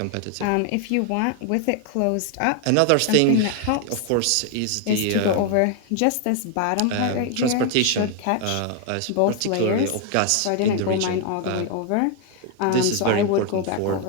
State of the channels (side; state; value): both; different; correlation 0.00